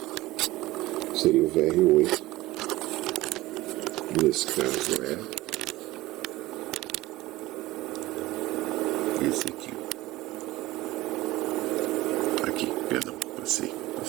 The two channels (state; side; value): quieter; left; 18.3 dB